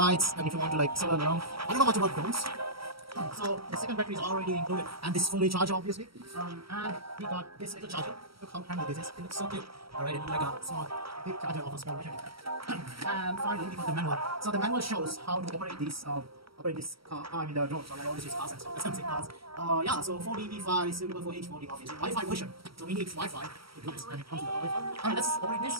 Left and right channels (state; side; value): late; left; 0.75 ms